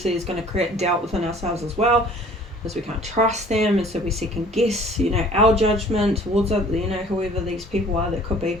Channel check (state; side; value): normal; both; correlation 0.52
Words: is going to create doubt within ourselves as well, because we can't trust them, and so we second guess, you know, our judgment towards, you know, whoever these people are that could